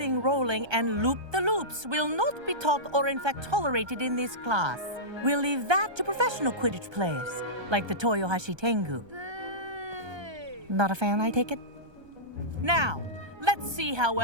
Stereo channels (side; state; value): left; late; 1.3 ms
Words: rolling, and loop-the-loops will not be taught or in fact tolerated in this class. We'll leave that to professional Quidditch players, like the Toyohashi Tengu. Not a fan, I take it? Now, let's see how